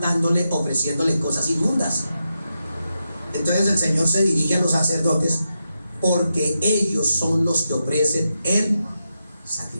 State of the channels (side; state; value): both; inverted; correlation -0.87